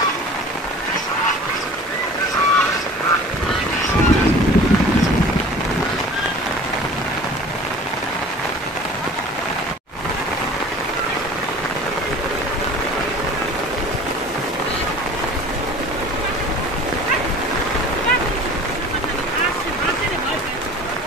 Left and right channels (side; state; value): both; normal; correlation 0.44